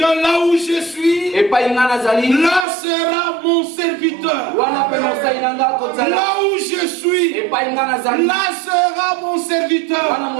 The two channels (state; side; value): drops out; left; at 2.7 s